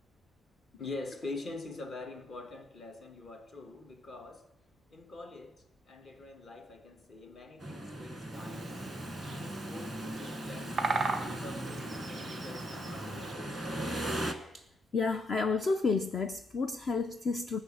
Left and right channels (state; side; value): normal; both; correlation 0.75